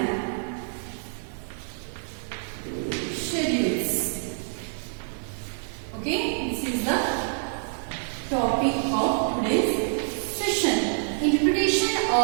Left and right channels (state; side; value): silent; left; digital silence